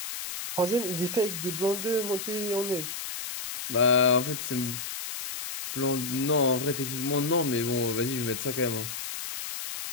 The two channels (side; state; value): left; noise; hiss, 6 dB below the sound